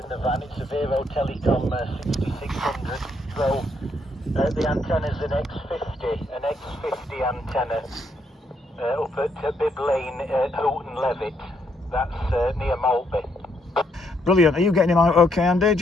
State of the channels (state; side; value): normal; both; correlation 0.74